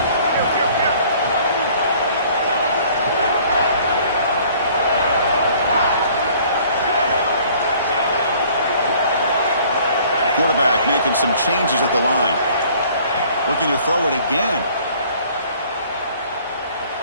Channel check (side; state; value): both; inverted; correlation -0.55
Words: Quarterback making some changes at the line. Looking to throw it again.